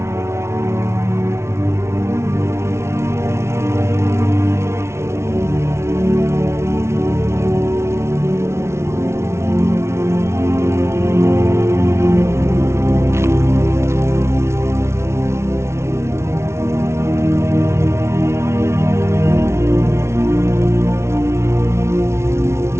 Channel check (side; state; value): left; late; 0.13 ms